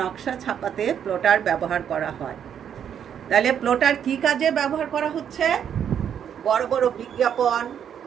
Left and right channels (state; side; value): quieter; left; 8.7 dB